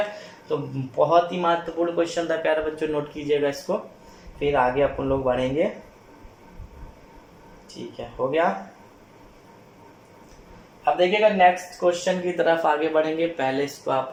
तो बहुत ही महत्वपूर्ण क्वेश्चन था प्यारे बच्चों, नोट कीजिएगा इसको, फिर आगे अपन लोग बढ़ेंगे। ठीक है, हो गया। अब देखिएगा नेक्स्ट क्वेश्चन की तरफ आगे बढ़ेंगे, पहले इसको आप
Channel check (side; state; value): both; identical; correlation 1.00